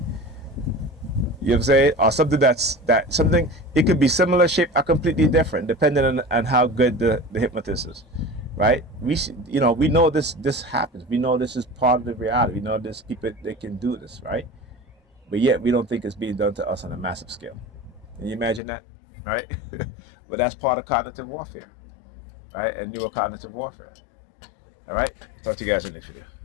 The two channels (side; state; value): right; drops out; at 18.6 s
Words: You know what I'm saying? Or something it could be similar shape or completely different, depending on how good the hypnotist is, right? We know this happens. We know this is part of the reality. We know there's people that can do this, right? But yet we don't think it's being done to us on a massive scale. Can you imagine that, right? But that's part of cognitive warfare, right? And neurocognitive warfare. All right. Talk to you guys in the next video.